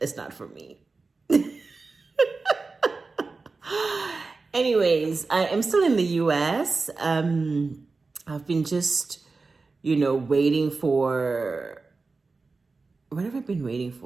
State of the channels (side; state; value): left; quieter; 4.0 dB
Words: not for me. Anyways, I am still in the US. I've been just, waiting for, what have I been waiting